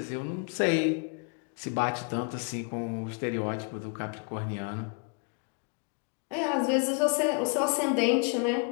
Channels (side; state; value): right; quieter; 36.5 dB